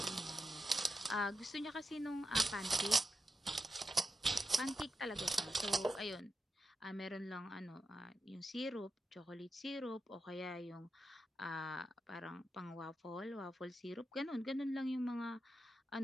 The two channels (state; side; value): normal; both; correlation 0.88